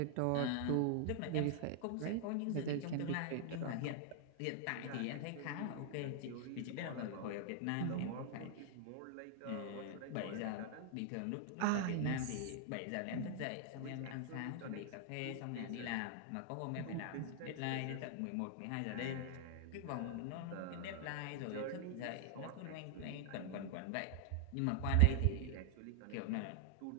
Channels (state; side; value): different; both; correlation -0.01